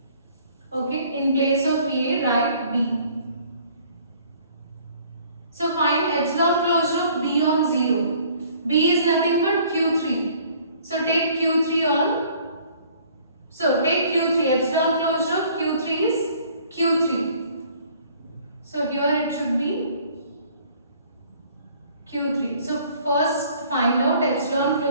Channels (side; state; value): both; inverted; correlation -0.56